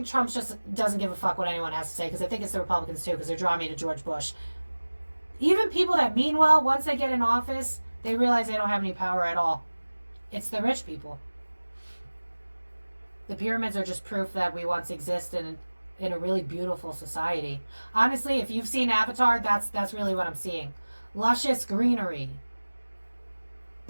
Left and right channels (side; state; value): both; inverted; correlation -1.00